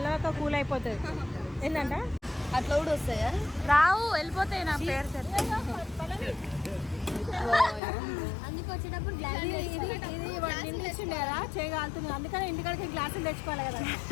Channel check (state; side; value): drops out; right; at 7.8 s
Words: కూల్ అయిపోతుంది. ఏంటంట అట్లా కూడా వస్తాయా? రావు, వెళ్ళిపోతాయి. నా పేరు అందుకు వచ్చేటప్పుడు ఇది ఇచ్చిండే కదా చేయగలుగుతుంది, అందుకని ఇంటికాడికి గ్లాసులు తెచ్చుకోవాలి కదా.